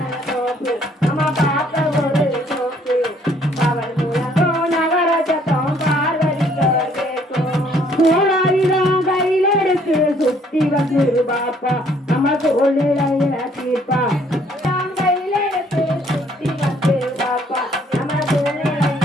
தோப்பு அம்மா காக்க ஒரு சோப்பு பகல் முழங்கோ நவர சத்தம் பார்வதிக்கோ கோளாரிதான் கையில் எடுத்து சுத்தி வந்து பாப்பா நம்ம சூழ்நிலையில தீர்ப்பா கையில் எடுத்து சுத்தி வந்து பாப்பா நம்ம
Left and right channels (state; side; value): normal; both; correlation 0.63